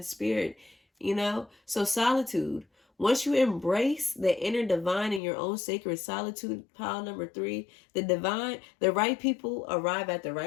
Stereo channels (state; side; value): drops out; right; at 5.2 s